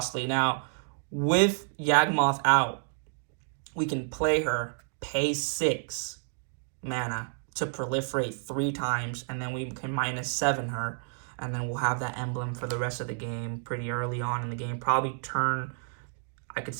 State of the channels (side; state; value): left; silent; digital silence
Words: Now, with Yawgmoth out, we can play her, pay 6 mana to proliferate 3 times, and then we can -7 her, and then we'll have that emblem for the rest of the game pretty early on in the game. Probably turn